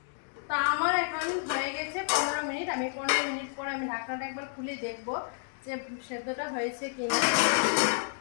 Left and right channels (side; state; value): right; silent; digital silence